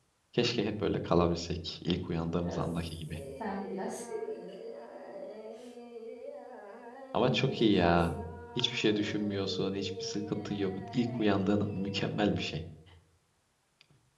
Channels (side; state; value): both; identical; correlation 1.00